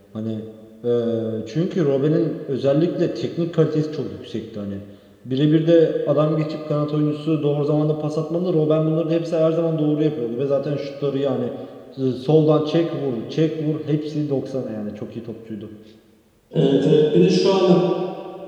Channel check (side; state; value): both; identical; correlation 1.00